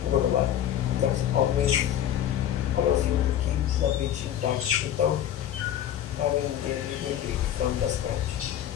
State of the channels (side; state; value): right; quieter; 10.9 dB